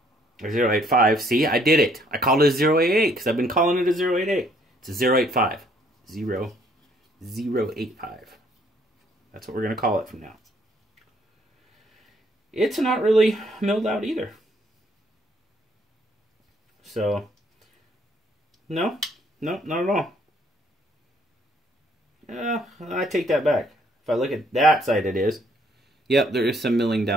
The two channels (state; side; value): normal; both; correlation 0.65